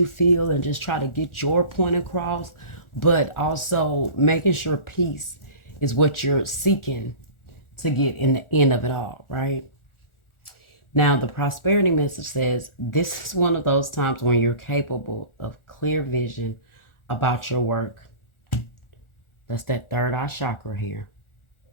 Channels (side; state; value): right; late; 1.4 ms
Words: feel and just try to get your point across. But also making sure peace is what you're seeking to get in the end of it all, right? Now, the prosperity message says this is one of those times when you're capable of clear vision about your work. That's that third eye chakra here.